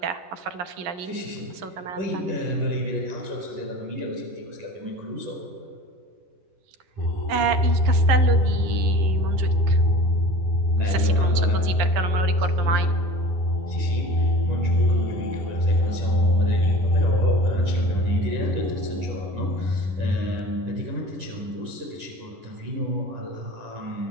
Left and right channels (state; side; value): late; left; 11 ms